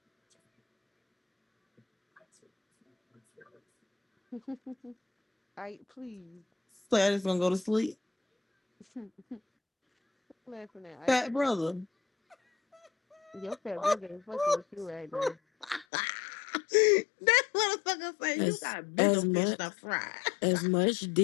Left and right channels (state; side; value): drops out; right; at 15.9 s